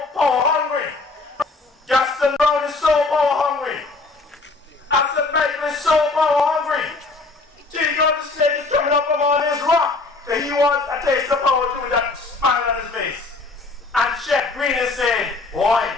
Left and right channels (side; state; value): right; quieter; 3.6 dB